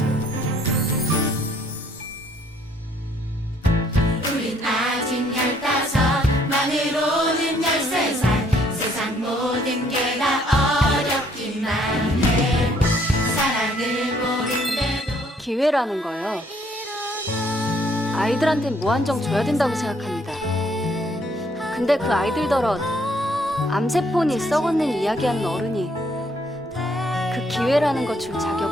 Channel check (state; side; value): normal; both; correlation 0.66